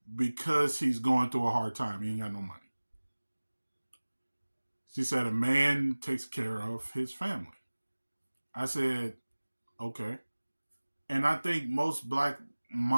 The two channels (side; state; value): both; inverted; correlation -1.00